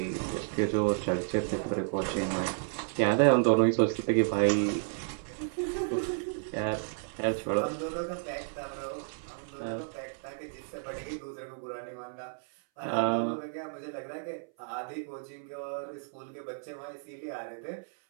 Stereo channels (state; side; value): silent; left; 56 dB below the other